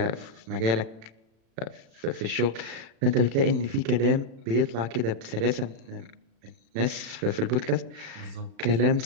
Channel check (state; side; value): late; left; 36 ms